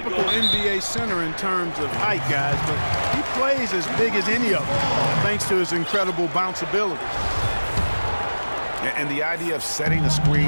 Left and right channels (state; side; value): inverted; both; correlation -1.00